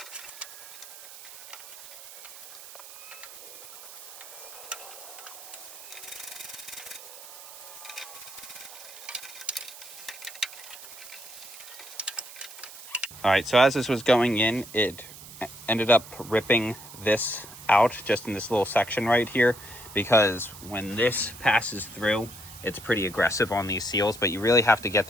All right, so as this was going in, it ended up ripping this out just in this little section right here, because when this passes through, it's pretty aggressive on these seals, but you really have to get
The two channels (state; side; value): noise; right; hiss, 15 dB below the sound